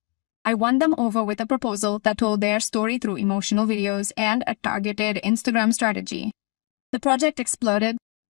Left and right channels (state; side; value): quieter; right; 30.6 dB